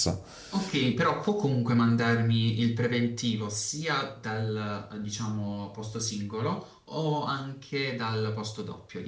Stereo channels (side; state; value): both; identical; correlation 1.00